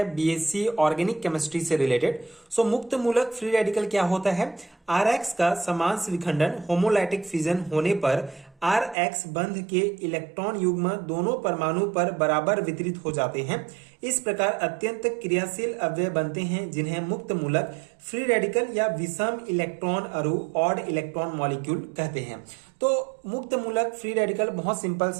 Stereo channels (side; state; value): left; drops out; at 9.0 s